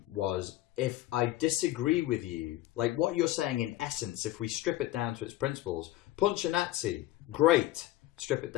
was, if I disagree with you, like what you're saying in essence, if we strip it down to its principles, punch a Nazi, great, strip it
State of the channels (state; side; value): quieter; right; 15.7 dB